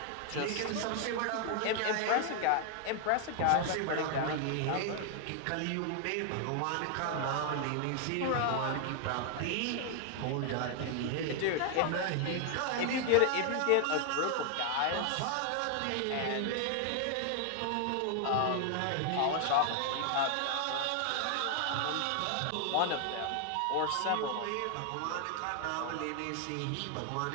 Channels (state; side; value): different; both; correlation 0.00